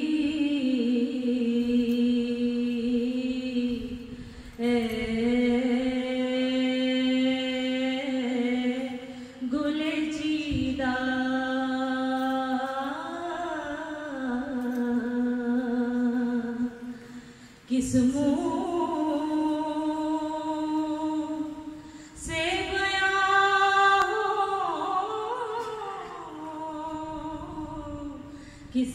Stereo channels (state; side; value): identical; both; correlation 1.00